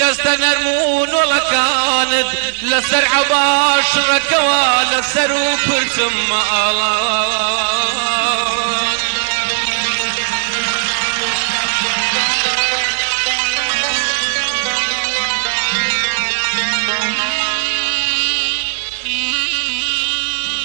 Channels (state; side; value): silent; left; digital silence